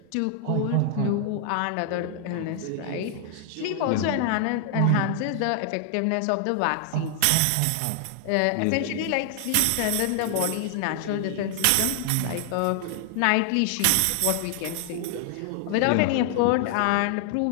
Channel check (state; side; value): different; both; correlation 0.00